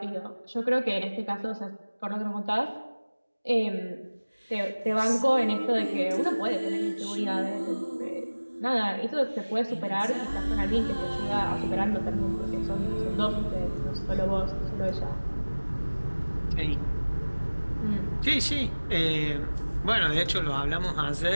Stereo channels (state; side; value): inverted; both; correlation -1.00